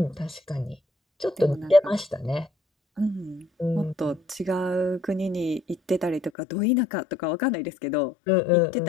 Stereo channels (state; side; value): drops out; right; at 6.3 s